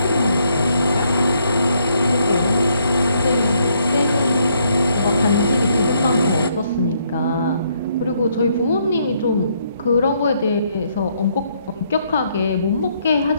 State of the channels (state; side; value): inverted; both; correlation -0.72